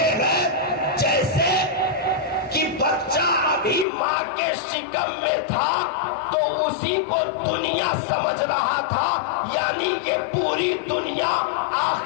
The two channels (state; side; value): drops out; right; at 3.9 s